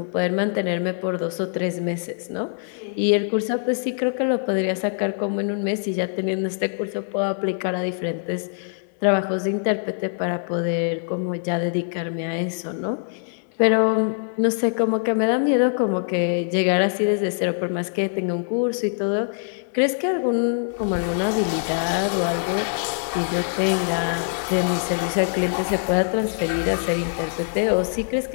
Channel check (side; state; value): right; silent; digital silence